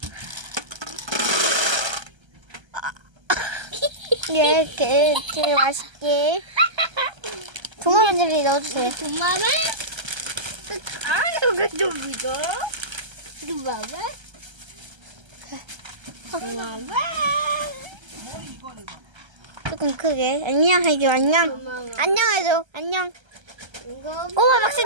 이렇게 맛있게. 도마뱀 넣어주세요. 도마뱀? 이거 좀 이거. 도마뱀? 도마뱀? 조금 크게. 안녕 해줘, 안녕. 고마워. 안녕 해줘, 안녕. 이거 꼬마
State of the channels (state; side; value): late; left; 1.3 ms